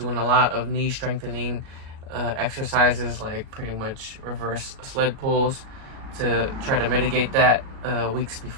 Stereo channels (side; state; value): left; late; 37 ms